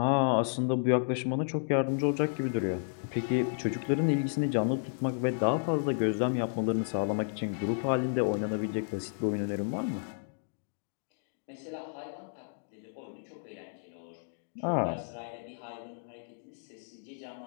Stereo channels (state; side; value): silent; right; digital silence